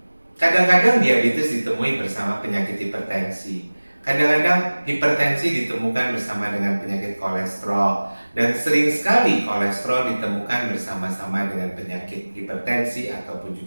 kadang-kadang diabetes ditemui bersama penyakit hipertensi. Kadang-kadang hipertensi ditemukan bersama dengan penyakit kolesterol, dan sering sekali kolesterol ditemukan bersama-sama dengan penyakit hipertensi ataupun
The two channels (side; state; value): both; inverted; correlation -1.00